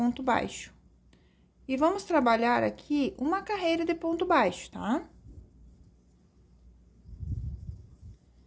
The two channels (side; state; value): both; identical; correlation 1.00